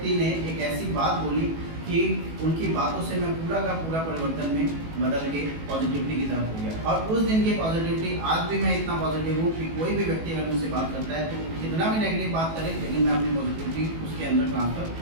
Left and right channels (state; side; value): late; left; 18 ms